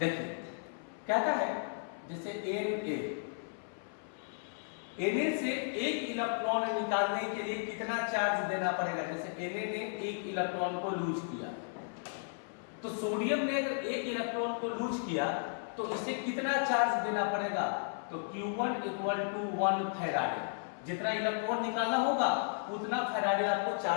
कहता है जैसे Na से एक इलेक्ट्रॉन निकालने के लिए कितना चार्ज देना पड़ेगा। जैसे Na ने एक इलेक्ट्रॉन को लूज किया, तो सोडियम ने अगर एक इलेक्ट्रॉन को लूज किया तो इसे कितना चार्ज देना पड़ेगा। तो Q1 इक्वल टू 1 फैराडे, जितना इलेक्ट्रॉन निकालना होगा उतना फैराडे आपको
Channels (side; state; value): right; silent; 55 dB below the other